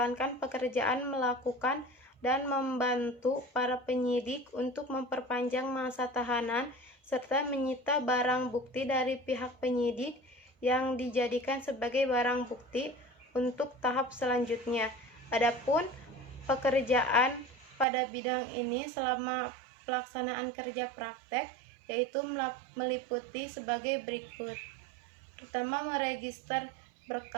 pekerjaan melakukan dan membantu para penyidik untuk memperpanjang masa tahanan serta menyita barang bukti dari pihak penyidik yang dijadikan sebagai barang bukti untuk tahap selanjutnya. Adapun pekerjaan pada bidang ini selama pelaksanaan kerja praktek yaitu meliputi sebagai berikut. Pertama, meregister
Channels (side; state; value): left; drops out; at 17.9 s